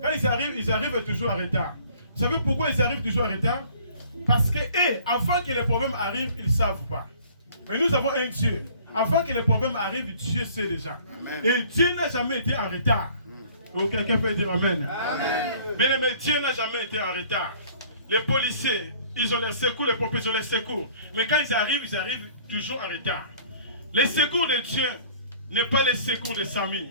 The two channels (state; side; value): inverted; both; correlation -0.53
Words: ils arrivent toujours en retard. Vous savez pourquoi ils arrivent toujours en retard? Parce que, avant que les problèmes arrivent, ils ne savent pas. Mais nous avons un Dieu. Avant que les problèmes arrivent, Dieu sait déjà. Amen. Et Dieu n'a jamais été en retard. Donc, quelqu'un peut dire amen. Mais Dieu n'a jamais été en retard. Les policiers, ils ont les secours, les pompiers, ils ont les secours. Mais quand ils arrivent toujours en retard. Les secours de Dieu n'est pas les secours de Samy.